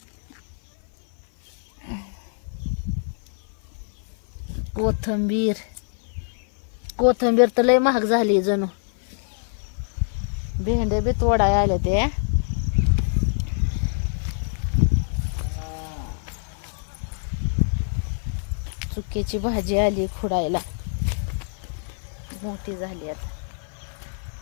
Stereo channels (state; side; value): silent; right; 56 dB below the other